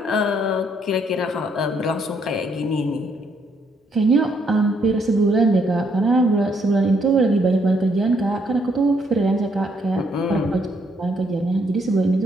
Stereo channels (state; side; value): normal; both; correlation 0.72